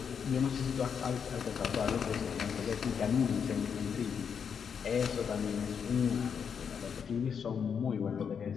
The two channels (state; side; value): quieter; right; 7.0 dB